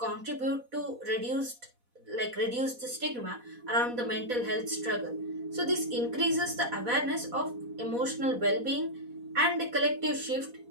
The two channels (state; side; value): late; left; 4.1 ms